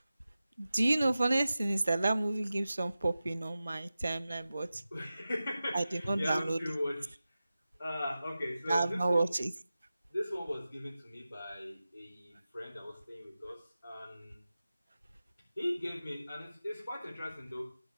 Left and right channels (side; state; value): both; inverted; correlation -0.94